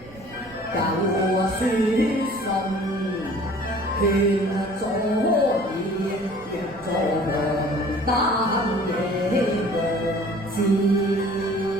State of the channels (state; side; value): noise; right; rumble, 22 dB below the sound